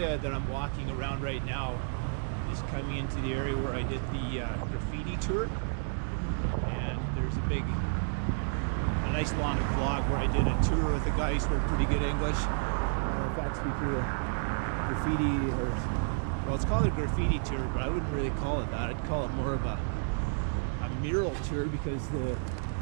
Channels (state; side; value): silent; left; digital silence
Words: that I'm walking around right now is coming into the area where I did the graffiti tour, and there's a nice long vlog where I did a tour with a guy who spoke pretty good English. Matter of fact, speaking of graffiti, well, it's called a graffiti tour, but I wouldn't really call it that. I'd call it more of a mural tour, because the